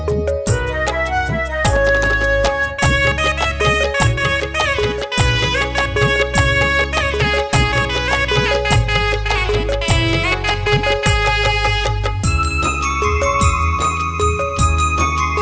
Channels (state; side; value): identical; both; correlation 1.00